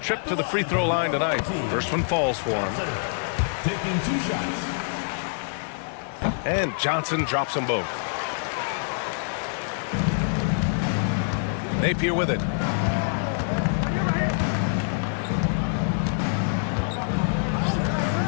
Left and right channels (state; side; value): silent; right; digital silence